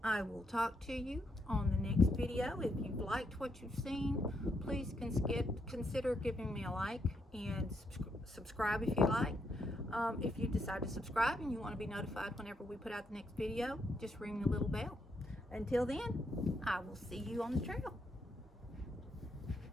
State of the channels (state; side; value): normal; both; correlation 0.78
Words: I will talk to you on the next video. If you've liked what you've seen, please consider giving me a like and subscribe if you like. If you decide to subscribe and you want to be notified whenever we put out the next video, just ring the little bell. Until then, I will see you on the trail.